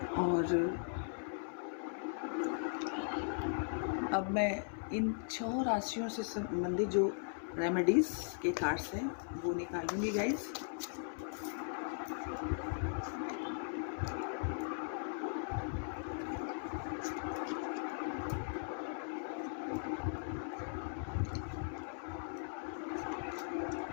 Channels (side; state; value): right; silent; 52 dB below the other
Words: और अब मैं इन 6 राशियों से संबंधित जो रेमेडीज़ के कार्ड्स हैं वो निकालूंगी गाइस।